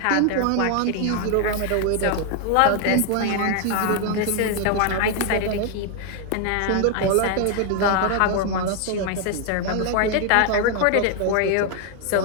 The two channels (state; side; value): different; both; correlation 0.00